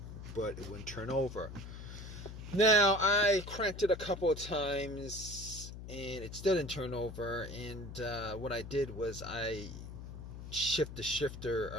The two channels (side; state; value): left; noise; hum, 11 dB below the sound